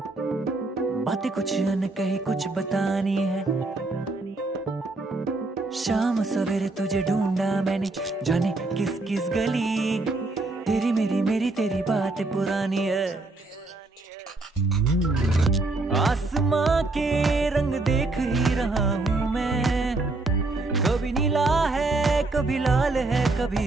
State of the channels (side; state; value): left; quieter; 3.2 dB